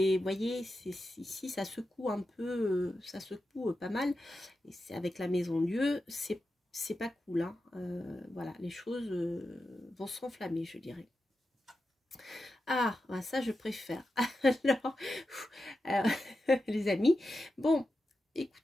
voyez, ici, ça secoue un peu, ça secoue pas mal. Et c'est avec la Maison Dieu, c'est pas cool. Hein. Voilà, les choses vont s'enflammer, je dirais. Ah, ça je préfère. Alors, les amis, bon,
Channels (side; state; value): both; normal; correlation 0.90